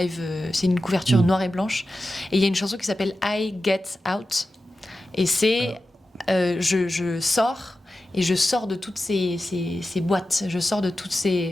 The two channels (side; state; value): both; normal; correlation 0.93